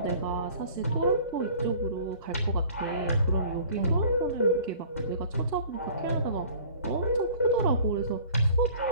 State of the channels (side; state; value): both; inverted; correlation -0.48